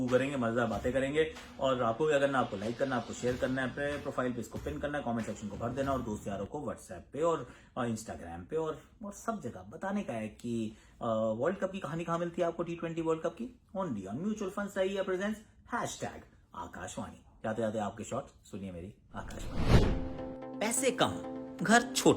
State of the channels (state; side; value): identical; both; correlation 1.00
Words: करेंगे, मजेदार बातें करेंगे। और आपको भी करना, आपको लाइक करना, आपको शेयर करना है, अपने प्रोफाइल पे इसको पिन करना है, कमेंट सेक्शन को भर देना और दोस्त यारों को व्हाट्सएप पे और इंस्टाग्राम पे और सब जगह बताने का है कि वर्ल्ड कप की कहानी कहाँ मिलती है आपको, T20 वर्ल्ड कप की, ओनली ऑन म्यूचुअल फंड्स सही है प्रेजेंस #आकाशवाणी। जाते जाते आपके शॉट सुनिए मेरी आकाशवाणी। पैसे कम, घर